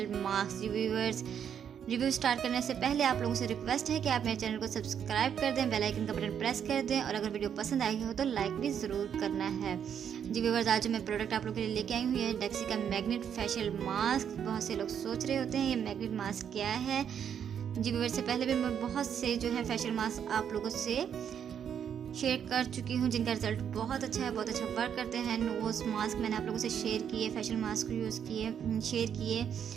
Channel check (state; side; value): quieter; left; 8.4 dB